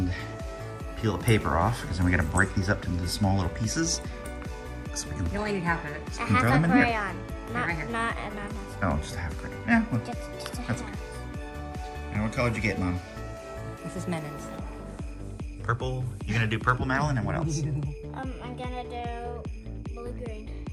peel the paper off because then we gotta break these up into small little pieces. So we can, You only need half of it. A throw half them a in here. crayon. Not, Right here. not oh, just a half crayon. Yeah, well, just a That's half. and what color did you get, Mom? This is Menin's. Purple. You're gonna do purple, Madeline, and what else? I'm gonna do blue-green.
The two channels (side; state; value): both; identical; correlation 1.00